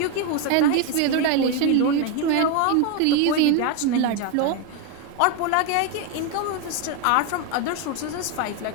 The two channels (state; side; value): different; both; correlation 0.01